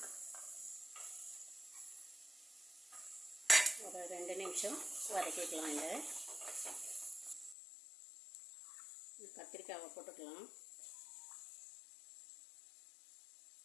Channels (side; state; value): right; drops out; at 7.6 s